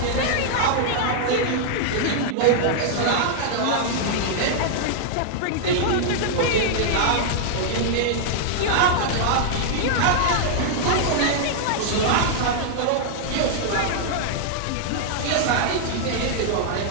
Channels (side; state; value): both; different; correlation -0.01